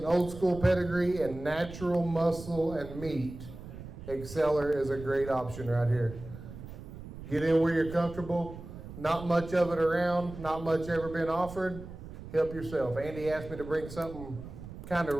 old school pedigree, and natural muscle and meat, Exceller is a great option right here. Get in where you're comfortable. Not much of it around, not much ever been offered. Help yourself. Andy asked me to bring something kind of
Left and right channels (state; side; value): noise; right; rumble, 13 dB below the sound